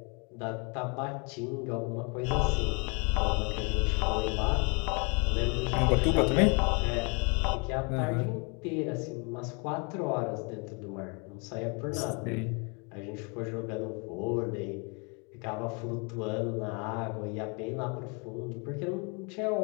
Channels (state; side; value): quieter; right; 33.5 dB